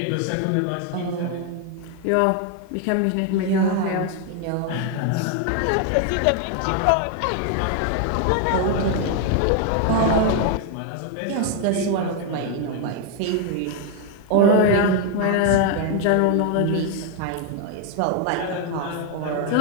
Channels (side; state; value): both; different; correlation 0.01